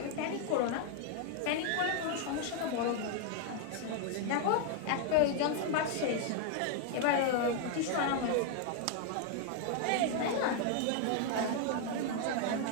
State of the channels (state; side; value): different; both; correlation 0.00